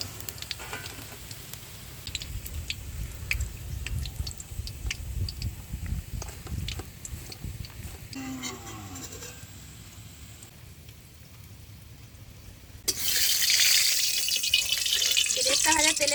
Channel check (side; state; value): both; identical; correlation 1.00